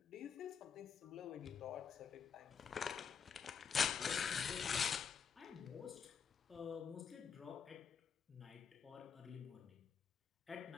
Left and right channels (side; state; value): right; quieter; 6.6 dB